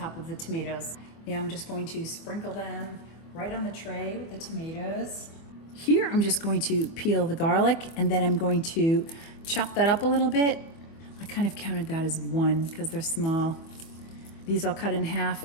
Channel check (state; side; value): late; right; 24 ms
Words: of the tomatoes. Now I'm just going to sprinkle them right on the tray with the tomatoes. Here I'm just going to peel the garlic, and then I'm going to chop that up a little bit. I kind of counted that as one because they're small. These I'll cut in half